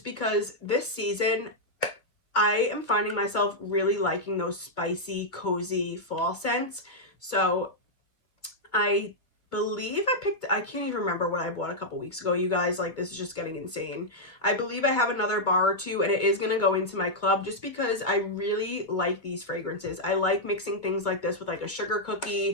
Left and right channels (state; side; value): late; right; 2.4 ms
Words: because this season I am finding myself really liking those spicy, cozy fall scents. So I believe I can't even remember what I bought a couple weeks ago, you guys. Like, this is just getting insane. I believe I have another bar or 2, and it is going to go into my club just because I really like these fragrances. I like mixing things like this with like a sugar